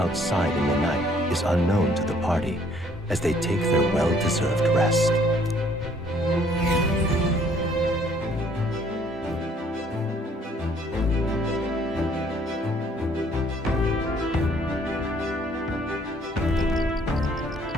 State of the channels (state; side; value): normal; both; correlation 0.62